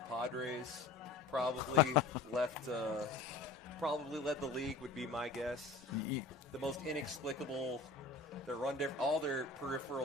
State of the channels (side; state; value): right; quieter; 3.7 dB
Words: probably probably led the league, would be my guess. The most inexplicable. All their